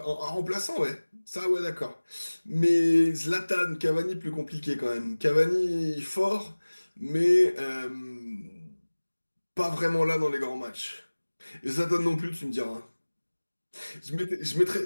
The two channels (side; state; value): both; inverted; correlation -1.00